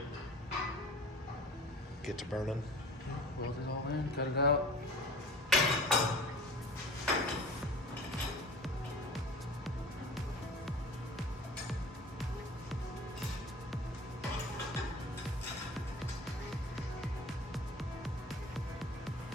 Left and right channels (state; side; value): normal; both; correlation 0.41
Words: Get to burning. Weld it all in, cut it out.